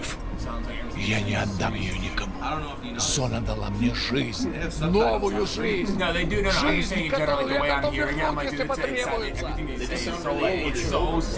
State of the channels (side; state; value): both; identical; correlation 1.00